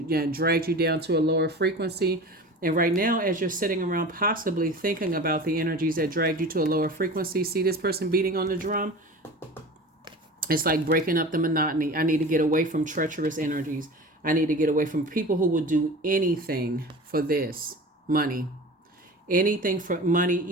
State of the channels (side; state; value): both; normal; correlation 0.36